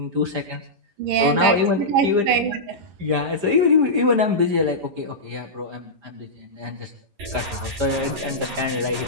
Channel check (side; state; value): left; late; 11 ms